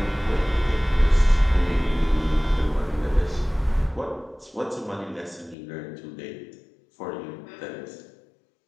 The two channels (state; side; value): drops out; right; at 5.6 s